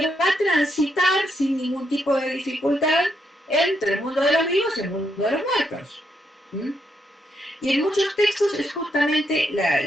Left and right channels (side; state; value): both; normal; correlation 0.79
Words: va a transitar sin ningún tipo de dificultad entre el mundo de los vivos y el mundo de los muertos. ¿Mm? Y en muchos textos es justamente